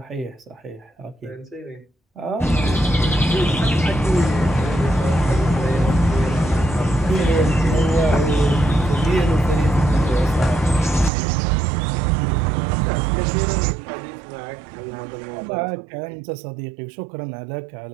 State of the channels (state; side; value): drops out; left; at 11.1 s